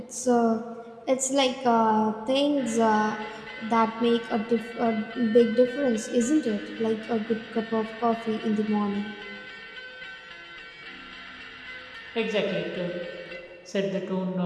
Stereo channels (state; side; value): identical; both; correlation 1.00